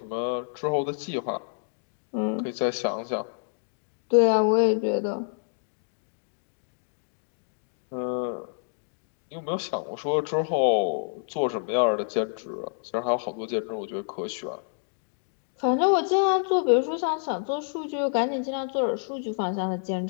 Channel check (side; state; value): right; silent; digital silence